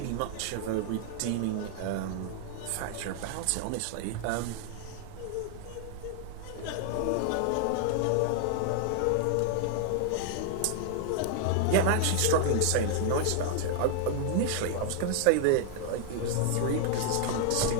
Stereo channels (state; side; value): different; both; correlation 0.00